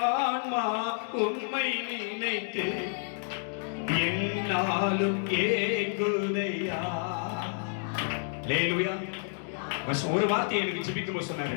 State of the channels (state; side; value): silent; right; digital silence